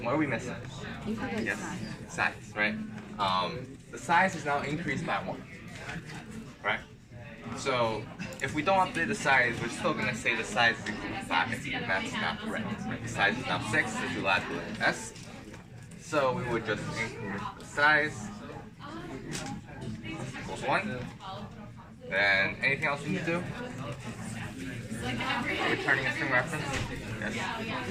What are we missing? Yes, size, right? The size is now increased by 1, right? So if we don't update the size, we're still going to say the size is equal to 5, and that's not correct. Right? The size is now 6, so we add the S. So we would just increase the size equals 1. Then anything else we need to do? Returning a string reference? Yes.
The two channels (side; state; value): both; identical; correlation 1.00